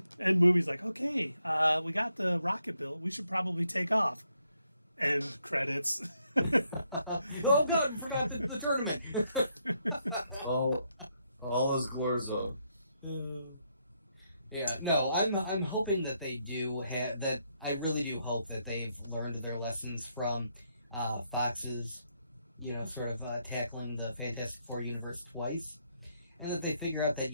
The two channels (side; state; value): both; inverted; correlation -0.77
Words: movie's okay, we got the rocket built. We should probably take off. End credits. Oh God, we forgot the tournament. all is Glorzo. Yeah, no, I'm hoping that they do have that. I really do hope that they've learned their lessons from Fox's, sort of tackling the Fantastic Four universe twice, and that they figure out that